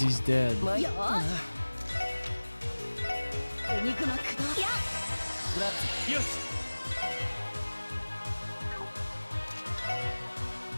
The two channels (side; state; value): both; inverted; correlation -1.00